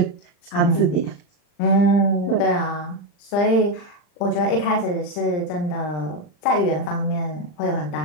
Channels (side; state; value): right; late; 40 ms